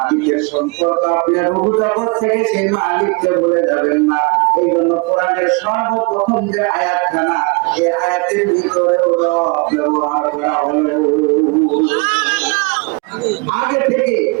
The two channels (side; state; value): left; quieter; 30.7 dB